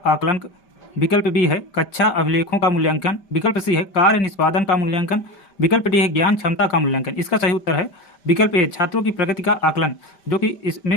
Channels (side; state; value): right; late; 5.1 ms